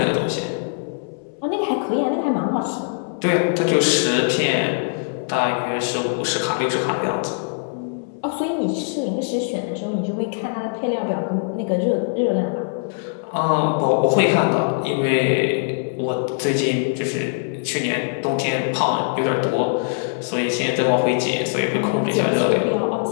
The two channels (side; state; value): right; silent; 64 dB below the other